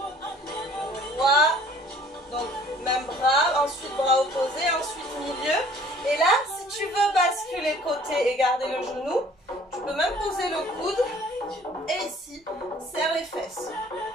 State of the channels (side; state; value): both; normal; correlation 0.54